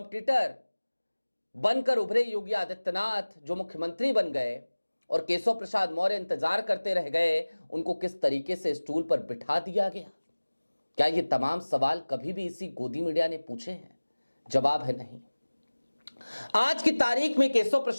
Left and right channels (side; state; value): both; inverted; correlation -1.00